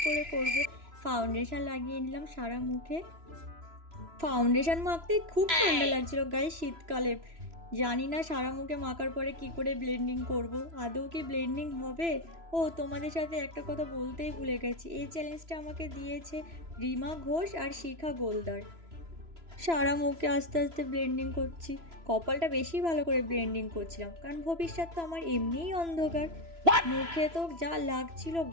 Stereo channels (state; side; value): late; left; 3.0 ms